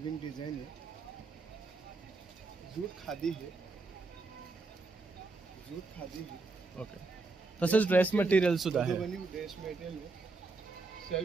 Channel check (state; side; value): quieter; left; 3.7 dB